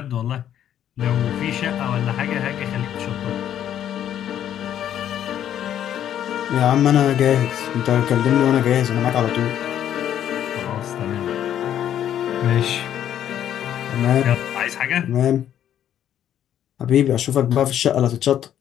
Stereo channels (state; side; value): quieter; right; 10.5 dB